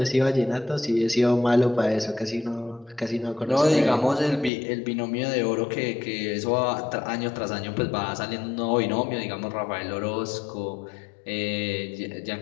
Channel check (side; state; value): right; drops out; at 4.5 s